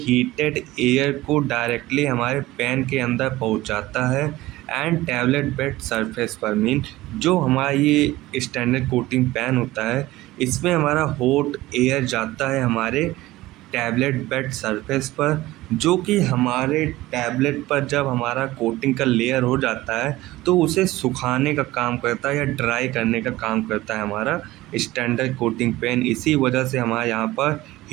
एयर को डायरेक्टली हमारे पैन के अंदर पहुंचाता है एंड टैबलेट बेड सरफेस पर। मीन जो हमारा ये स्टैंडर्ड कोटिंग पैन होता है इसमें हमारा हॉट एयर जाता है हमारे टैबलेट बेड सरफेस पर, जो कि हमारे टैबलेट पर जब हमारा कोटिंग का लेयर हो जाता है तो उसे सुखाने का काम करता है या ड्राई करने का काम करता है हमारा स्टैंडर्ड कोटिंग पेन। इसी वजह से हमारे यहाँ पर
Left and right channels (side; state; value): left; quieter; 17.7 dB